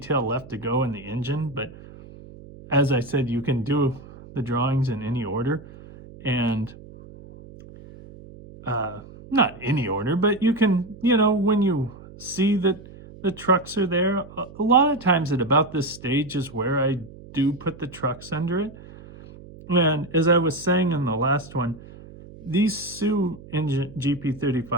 left to go in the engine, but as I said, you can do the drawings in any order. And not any order, but you can, when you see that the trucks are there, a lot of times at about this stage is where I do put the trucks under it. And as I was saying in the last one, these Sioux engine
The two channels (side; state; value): right; noise; hum, 18 dB below the sound